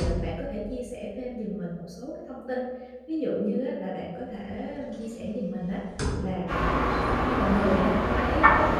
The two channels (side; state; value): both; identical; correlation 1.00